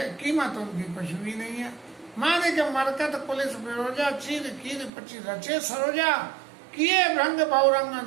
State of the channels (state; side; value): drops out; left; at 4.9 s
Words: कीमत उनकी कुछ भी नहीं है। माने के मरकत पुलिस बेरोजा चीर कीर पची रचे सरोजा, किए भ्रंग बहुरंग